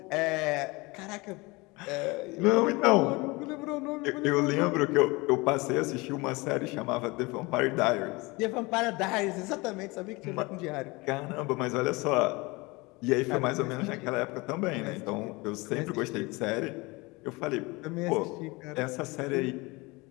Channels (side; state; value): right; quieter; 24.4 dB